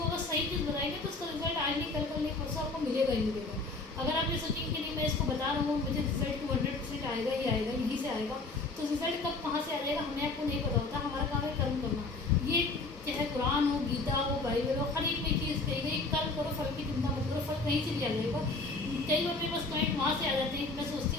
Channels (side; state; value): right; quieter; 3.5 dB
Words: अगर सही चीज़ बताएंगे तो उसका रिजल्ट आज नहीं कल नहीं परसों आपको मिलेगा ही मिलेगा। अगर आप ये सोचेंगे कि नहीं मैं इसको बता रहा हूँ मुझे रिजल्ट 200% आएगा ही आएगा, यहीं से आएगा, तो रिजल्ट कब कहाँ से आ जाएगा हमें आपको नहीं पता होता। हमारा काम है कर्म करना। ये चाहे कुरान हो, गीता हो, बाइबल हो, हर एक में चीज़ कही गई कर्म करो फल की चिंता मत करो, फल कहीं से भी आ जाएगा। कई बार मेरे पास क्लाइंट वहाँ से आ जाते हैं, मैं